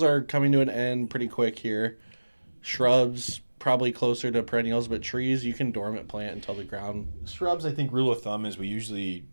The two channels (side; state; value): both; inverted; correlation -1.00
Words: are coming to an end pretty quick here. Shrubs probably closer to perennials, but trees you can dormant plant until the ground. Shrubs, I think rule of thumb is we usually